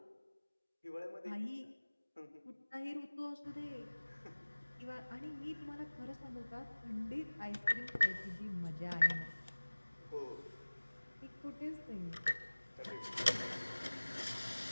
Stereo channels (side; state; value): both; inverted; correlation -1.00